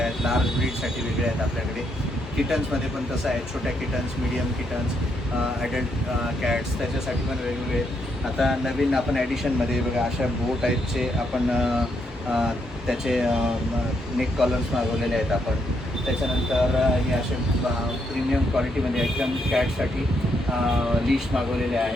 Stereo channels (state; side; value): normal; both; correlation 0.77